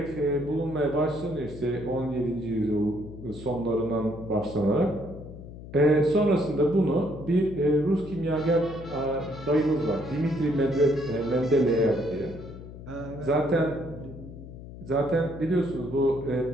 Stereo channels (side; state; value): left; noise; hum, 14 dB below the sound